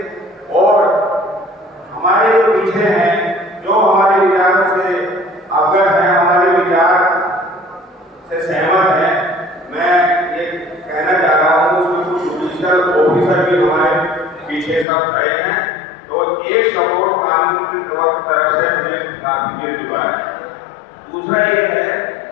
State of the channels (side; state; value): right; drops out; at 14.9 s